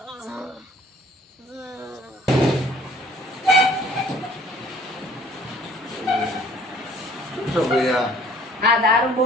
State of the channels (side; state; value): both; normal; correlation 0.55